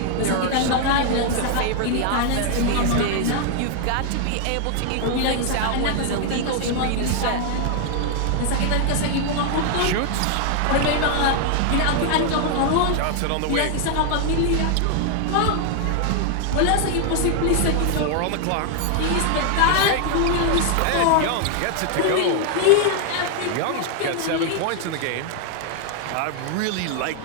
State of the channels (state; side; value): different; both; correlation 0.00